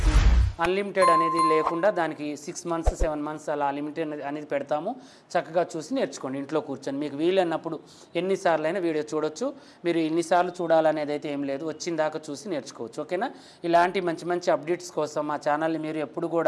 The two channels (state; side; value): identical; both; correlation 1.00